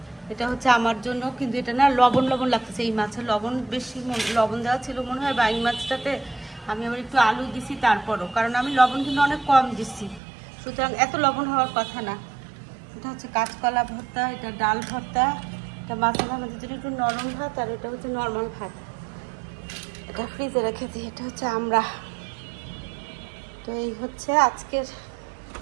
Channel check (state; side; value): drops out; left; at 10.2 s